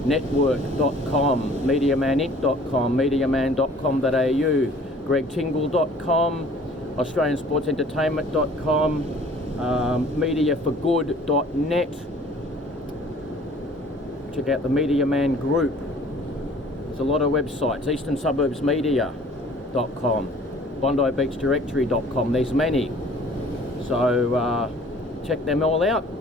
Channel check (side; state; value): both; normal; correlation 0.52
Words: MediaManInc.com, MediaMan.com.au, GregTingle.com, AustralianSportsEntertainment.com, MediaForGood.net. Check out the Media Man Group. There's a lot of websites. EasternSuburbsMedia.com, BondiBeachDirectory.com. There's many. So check them all out.